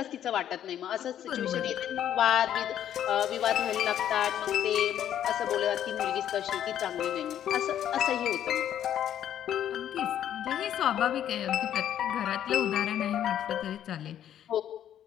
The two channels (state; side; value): quieter; right; 10.5 dB